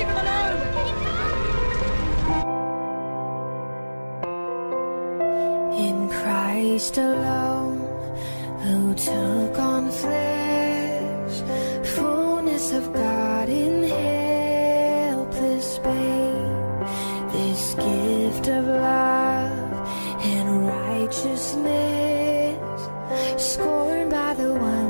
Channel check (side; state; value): both; inverted; correlation -1.00